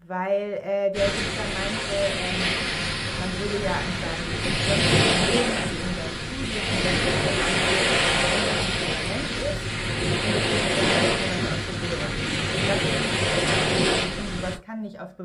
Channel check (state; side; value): identical; both; correlation 1.00